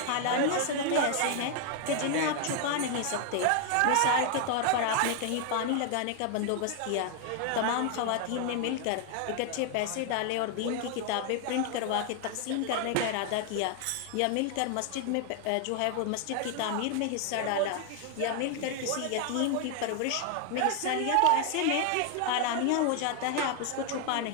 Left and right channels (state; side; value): different; both; correlation 0.00